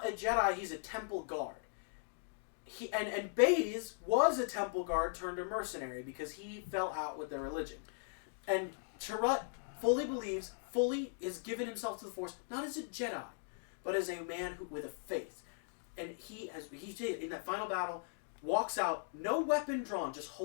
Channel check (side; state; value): right; silent; digital silence